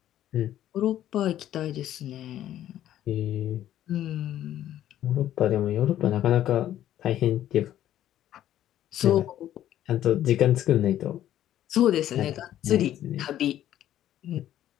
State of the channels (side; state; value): right; quieter; 12.1 dB